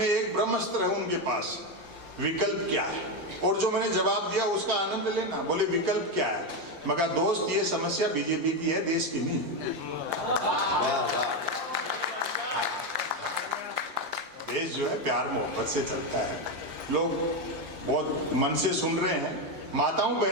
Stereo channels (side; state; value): left; late; 5.7 ms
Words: एक ब्रह्मास्त्र है उनके पास, विकल्प क्या है। और जो मैंने जवाब दिया उसका आनंद लेना। बोले विकल्प क्या है? मैं कहा दोस्त ये समस्या बीजेपी की है, देश की नहीं। देश जो है प्यार मोहब्बत से चलता है। लोग बहुत मन से सुन रहे हैं। माताओं